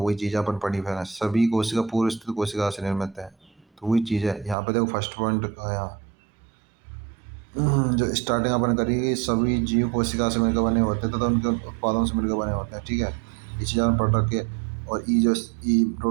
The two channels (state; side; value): drops out; left; at 4.5 s